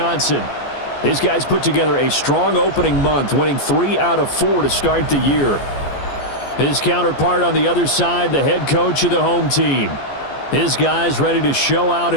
His guys put together a strong opening month, winning 3 out of 4 to start the year. His counterpart on the other side, the head coach of the home team. His guys ready to show out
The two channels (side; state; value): right; late; 14 ms